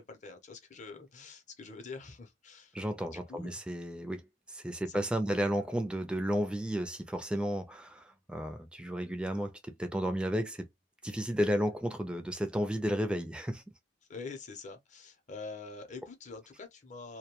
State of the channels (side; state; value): both; normal; correlation 0.87